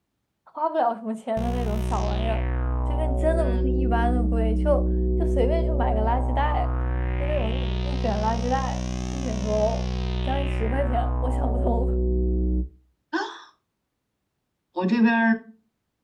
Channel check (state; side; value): identical; both; correlation 1.00